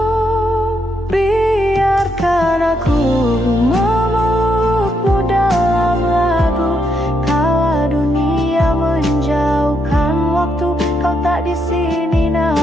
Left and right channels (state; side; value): normal; both; correlation 0.78